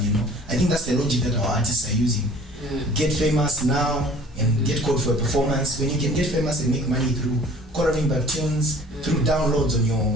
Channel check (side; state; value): both; normal; correlation 0.50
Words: I think that's the logic that our artists are using. Get famous now and get called for a performance. When you can get famous and make money through coloring back tunes, through downloads